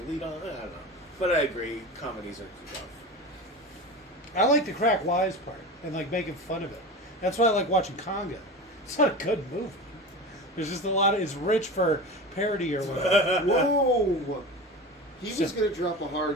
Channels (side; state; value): both; normal; correlation 0.29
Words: lead on. I don't know. But I agree, comedies are rough. I like the crack wise part and like making fun of it. That's why I like watching Congo. It's not a good movie. There's just a lot of, it's rich for parody or whatever. Whoa! He was going to drop a